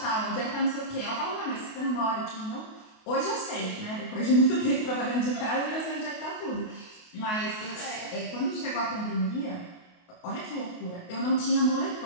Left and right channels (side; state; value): right; late; 28 ms